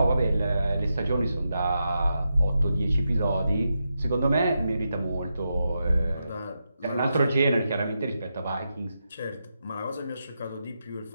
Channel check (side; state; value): both; inverted; correlation -0.86